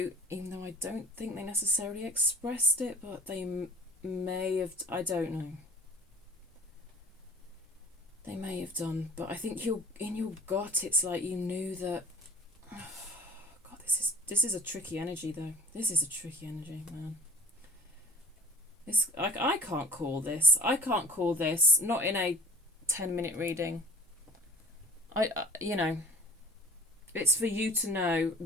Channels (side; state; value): both; normal; correlation 0.44